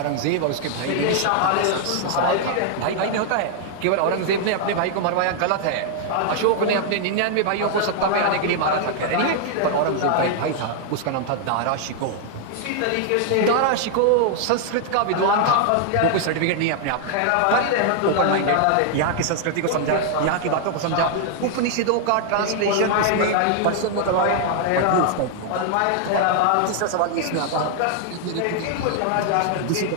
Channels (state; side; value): different; both; correlation 0.00